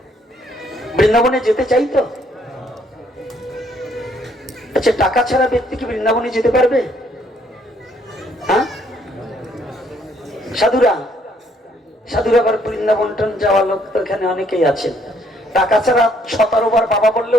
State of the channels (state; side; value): normal; both; correlation 0.67